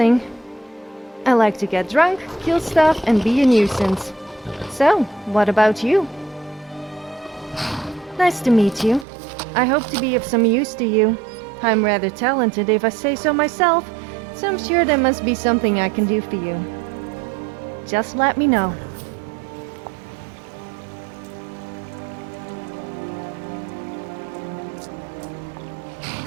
I like to get drunk, kill stuff, and be a nuisance. So, what about you? Nice to meet you. I hope to be of some use to you. I'm rather talented if I say so myself, so I'm sure there must be something I can do for you. Just let me know.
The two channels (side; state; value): left; drops out; at 9.1 s